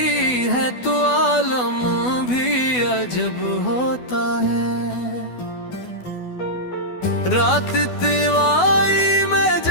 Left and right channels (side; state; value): right; late; 12 ms